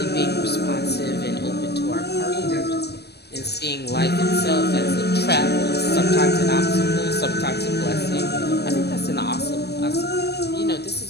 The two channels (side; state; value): right; late; 0.48 ms